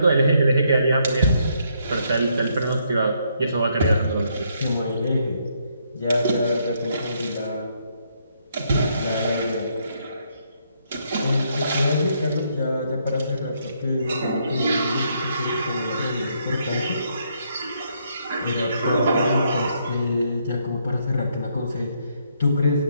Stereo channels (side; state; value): both; inverted; correlation -0.73